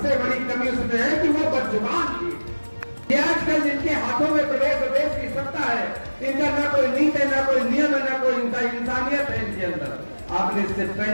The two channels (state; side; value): inverted; both; correlation -1.00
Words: बड़ी कमी उसमें है कि वो बदजुबान थी। ये आजकल जिनके हाथों में प्रदेश और देश की सत्ता है, इनका ना कोई नीति है, ना कोई नियम है, ना कोई इंसानियत है इनके अंदर। आपने इससे